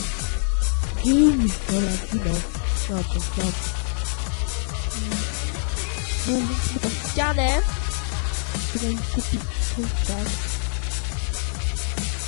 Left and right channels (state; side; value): silent; right; 62 dB below the other